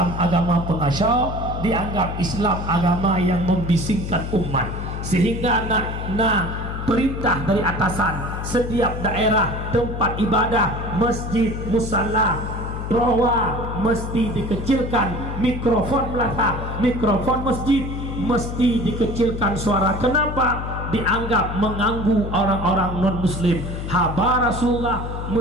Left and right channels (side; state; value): left; noise; hum, 5 dB below the sound